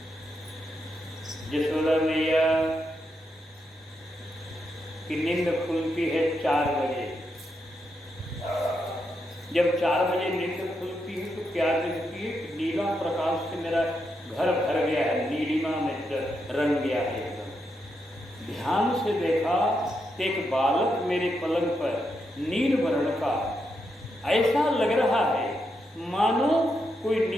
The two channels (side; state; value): both; normal; correlation 0.82